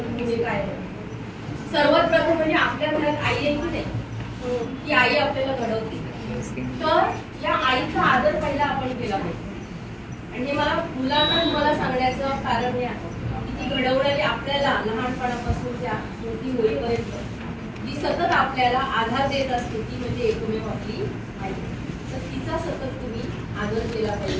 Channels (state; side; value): identical; both; correlation 1.00